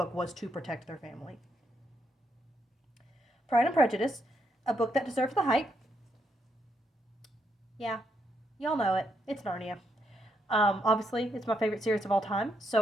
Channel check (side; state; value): both; normal; correlation 0.78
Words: was to protect their family. Pride and Prejudice, a book that deserves the hype. Yeah, y'all know it. It's Narnia. Obviously, it's my favorite series of all time,